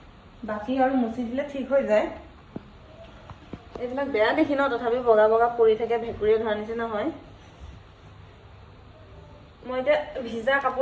বাকী আৰু মুচি দিলে ঠিক হৈ যায় এইবিলাক বেয়া দেখি ন তথাপি বগা বগা পৰি থাকে ভেকুৰি ধৰা নিচিনা হয় মই এতিয়া ভিজা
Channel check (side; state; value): both; identical; correlation 1.00